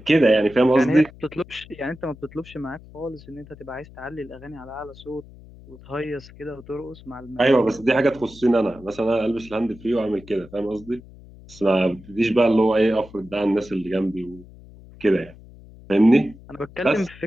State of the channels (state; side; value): noise; left; hum, 20 dB below the sound